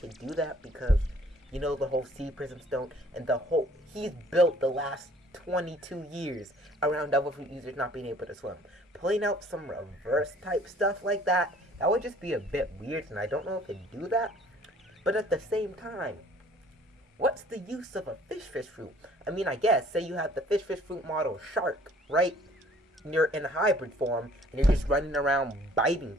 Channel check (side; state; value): both; normal; correlation 0.56